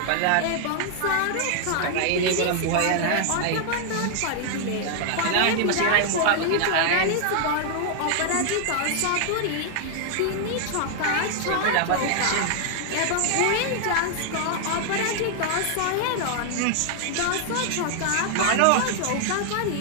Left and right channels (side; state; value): both; different; correlation 0.00